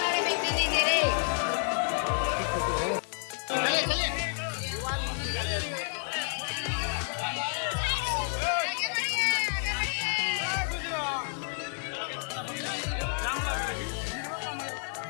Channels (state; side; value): silent; right; 58 dB below the other